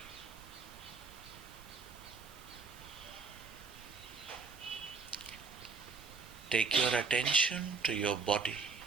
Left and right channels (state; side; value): quieter; left; 4.7 dB